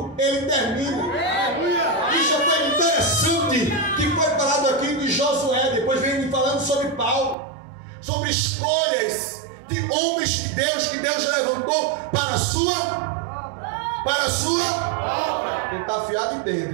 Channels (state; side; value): drops out; left; at 7.4 s